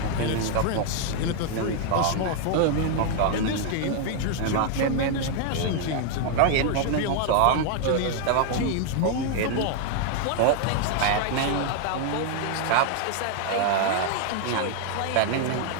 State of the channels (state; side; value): different; both; correlation 0.00